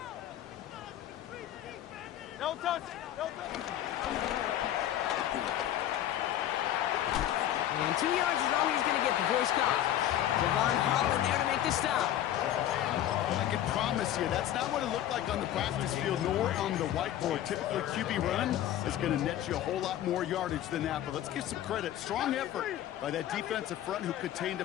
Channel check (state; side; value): quieter; right; 12.1 dB